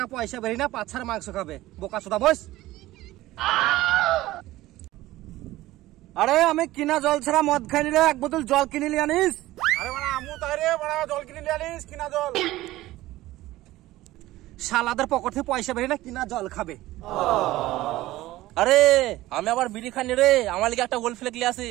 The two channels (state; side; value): quieter; left; 16.8 dB